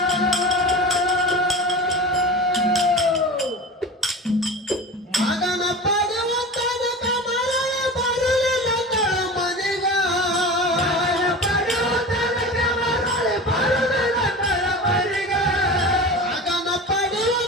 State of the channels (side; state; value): both; normal; correlation 0.31